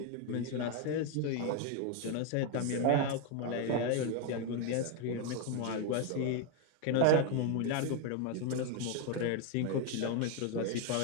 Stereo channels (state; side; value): different; both; correlation 0.01